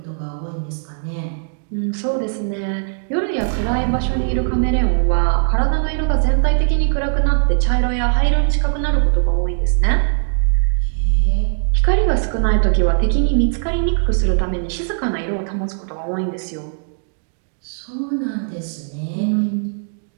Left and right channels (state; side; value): silent; left; digital silence